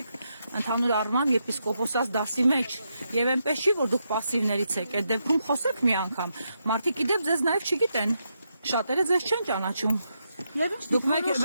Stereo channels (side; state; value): both; inverted; correlation -0.82